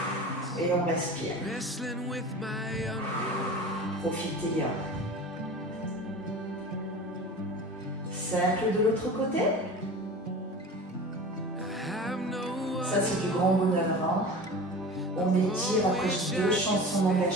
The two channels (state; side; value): normal; both; correlation 0.35